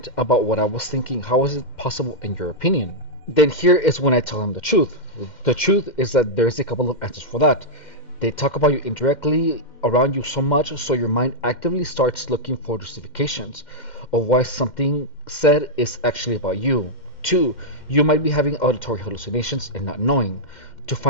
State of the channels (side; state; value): right; late; 2.1 ms